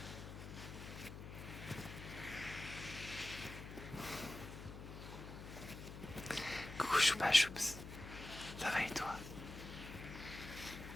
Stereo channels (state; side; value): noise; left; hum, 10 dB below the sound